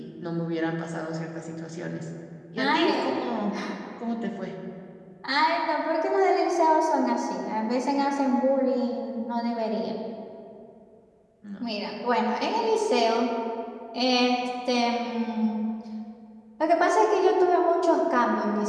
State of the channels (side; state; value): both; identical; correlation 1.00